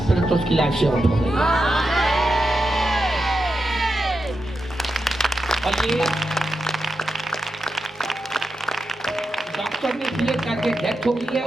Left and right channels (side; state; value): both; normal; correlation 0.88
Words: उसकी लाइफ से आउट हो गई। और ये डॉक्टर ने क्लियर करके डेथ हो गई है।